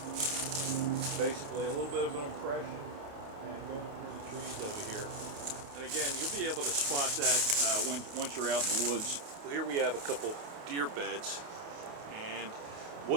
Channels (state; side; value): late; left; 28 ms